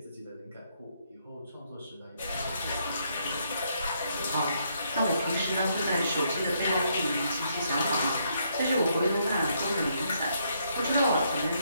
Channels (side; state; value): both; inverted; correlation -0.73